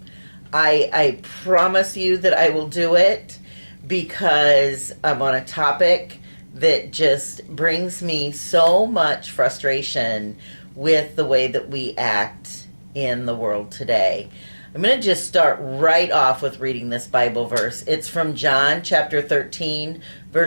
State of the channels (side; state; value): both; inverted; correlation -1.00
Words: I promise you that I will do it because I'm on a topic that just brings me so much frustration with the way that we act in the world today. I'm going to just start right off with reading this Bible verse. It's from John chapter 13,